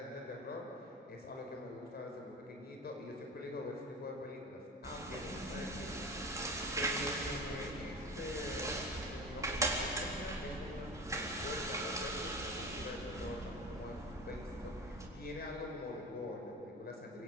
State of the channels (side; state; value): both; normal; correlation 0.31